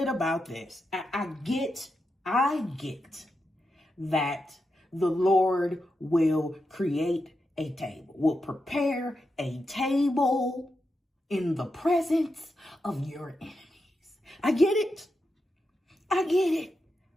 about this. I get that the Lord will create a table, will prepare a table in the presence of your enemies. I get it.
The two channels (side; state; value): both; normal; correlation 0.87